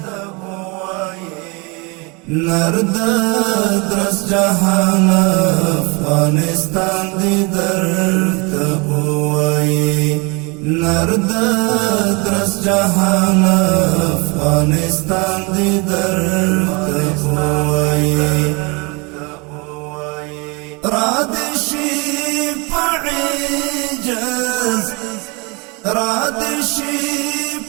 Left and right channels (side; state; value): left; quieter; 29.1 dB